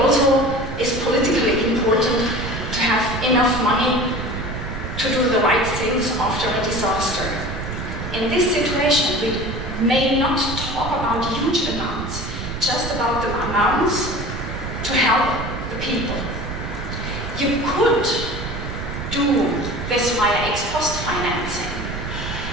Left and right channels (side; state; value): right; noise; rumble, 7 dB below the sound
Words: is politically important to have enough money to do the right things after a disaster. In this situation, we may not talk about huge amounts, just about the amounts to help the people. You could do this via ex post financing,